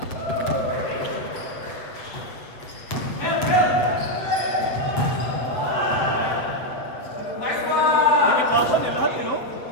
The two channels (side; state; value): right; late; 7.8 ms